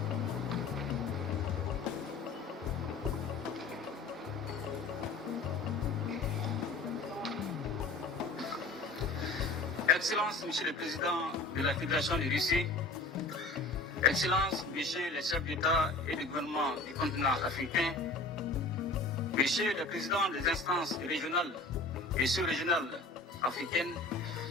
Excellences, Monsieur le Président de la Fédération de Russie, Excellences, Messieurs les chefs d'État et de gouvernement du continent africain, Messieurs les présidents des instances régionales et sous-régionales africaines,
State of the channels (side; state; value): right; quieter; 3.4 dB